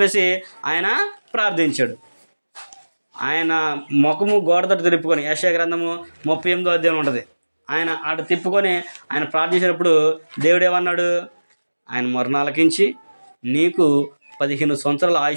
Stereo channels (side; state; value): both; inverted; correlation -1.00